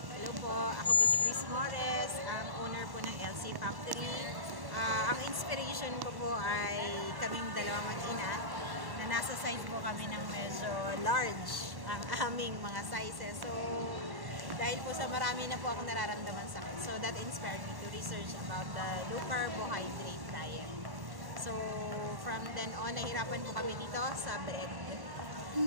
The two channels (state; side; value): late; left; 1.1 ms